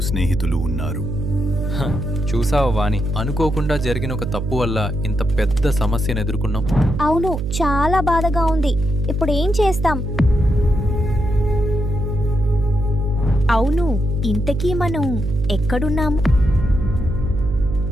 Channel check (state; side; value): noise; right; hum, 3 dB below the sound